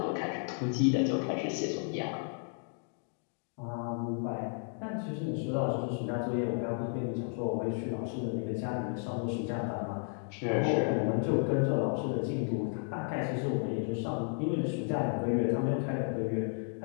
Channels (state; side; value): silent; right; 56 dB below the other